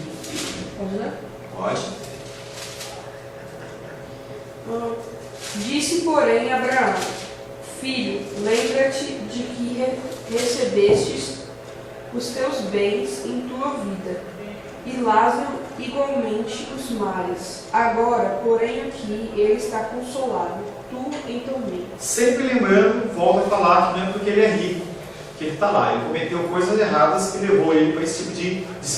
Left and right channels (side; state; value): both; identical; correlation 1.00